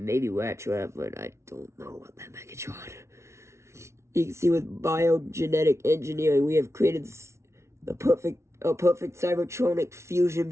maybe Rat Trap, but I don't know about that Megatron. You can see with biogenetic engineering, we have created a perfect cybertronic fusion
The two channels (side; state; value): left; late; 0.13 ms